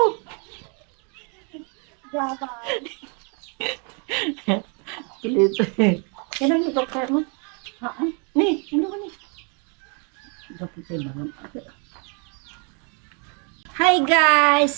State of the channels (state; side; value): quieter; left; 36.8 dB